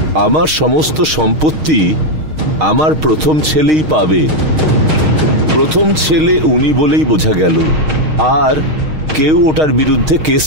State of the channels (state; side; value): late; left; 6.5 ms